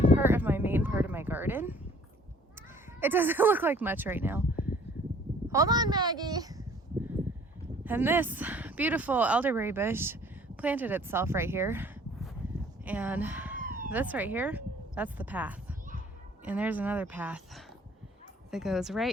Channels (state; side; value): normal; both; correlation 0.54